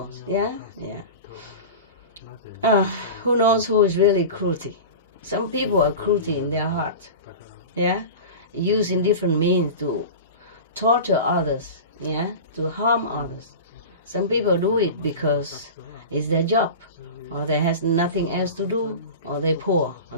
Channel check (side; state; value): both; inverted; correlation -0.31